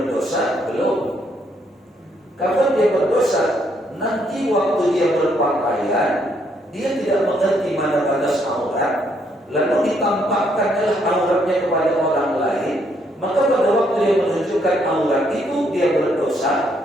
Belum. Kapan dia berdosa? Nanti waktu dia berpakaian, dia tidak mengerti mana batas aurat, lalu ditampakkanlah auratnya kepada orang lain, maka pada waktu dia menunjukkan aurat itu dia berdosa.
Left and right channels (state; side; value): normal; both; correlation 0.72